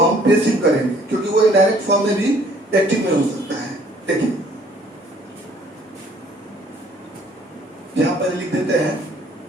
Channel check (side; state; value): both; normal; correlation 0.59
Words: पेसिव करेंगे, क्योंकि वो इनडायरेक्ट फॉर्म में भी एक्टिव में हो सकता है। देखिए यहाँ पर लिख देते हैं